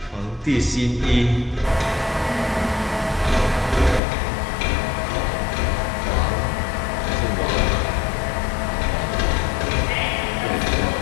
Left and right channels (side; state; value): right; drops out; at 4.0 s